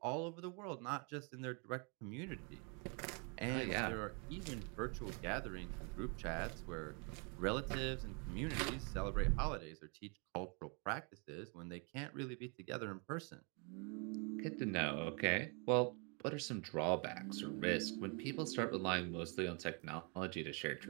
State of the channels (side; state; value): left; quieter; 35.0 dB